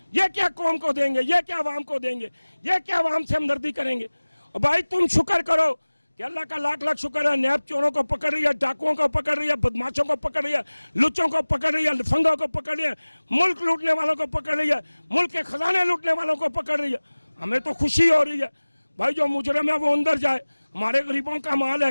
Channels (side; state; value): both; inverted; correlation -1.00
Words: ये क्या कौम को देंगे, ये क्या आवाम को देंगे, ये क्या आवाम से हमदर्दी करेंगे। और भाई तुम शुक्र करो कि अल्लाह का लाख लाख शुक्र है, नैब चोरों को पकड़ रही है, डाकुओं को पकड़ रही है, बदमाशों को पकड़ रही है, लुच्चों को पकड़ रही है, लफंगों को पकड़ रही है, मुल्क लूटने वालों को पकड़ रही है, मुल्क के खजाने लूटने वालों को पकड़ रही है। हमें तो खुशी हो रही है भाई, जो मुजरिम है वो अंदर जाए। हमारे गरीबों का माल है,